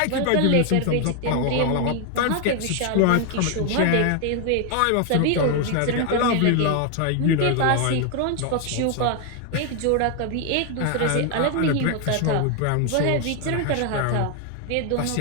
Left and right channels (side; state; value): both; different; correlation 0.00